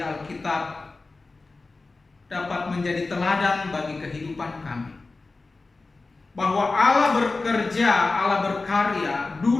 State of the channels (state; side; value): quieter; right; 3.6 dB